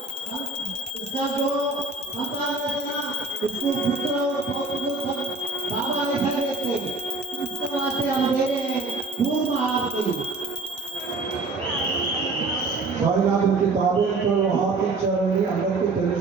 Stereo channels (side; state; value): left; quieter; 3.4 dB